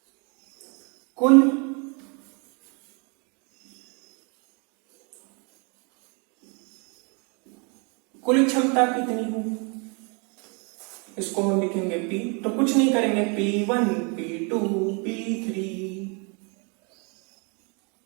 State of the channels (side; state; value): left; quieter; 33.9 dB